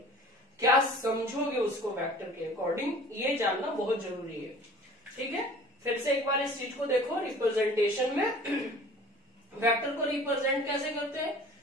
क्या समझोगे उसको वेक्टर के अकॉर्डिंग, ये जानना बहुत जरूरी है। ठीक है, फिर से एक बार इस चीज को देखो, रिप्रेजेंटेशन में वेक्टर को रिप्रेजेंट कैसे करते हैं,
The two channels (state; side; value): normal; both; correlation 0.46